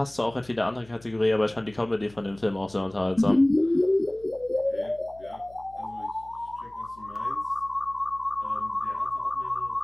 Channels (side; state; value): left; noise; hum, 24 dB below the sound